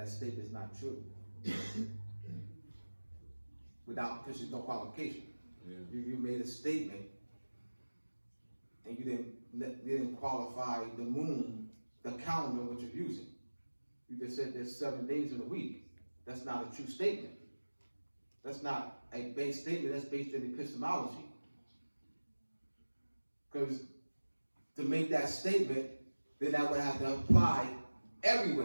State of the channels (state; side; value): inverted; both; correlation -1.00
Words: statement is not true. Because there's no qualification. Yeah. You made a statement and you didn't qualify the moon, the calendar which you're using. You just said there's 7 days in a week. that's not a true statement. That's not a base statement, that's based in epistemology. Because to make that statement, then that would have to apply